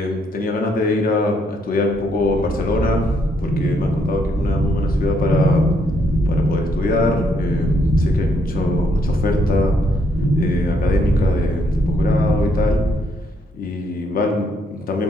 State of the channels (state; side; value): normal; both; correlation 0.72